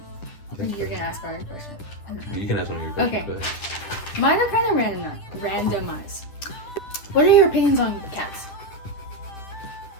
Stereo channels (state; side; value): late; right; 10 ms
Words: You're gonna ask our question. You can ask one of your questions. Okay. Go ahead. Mine are kind of randomized. What are your opinions on cats?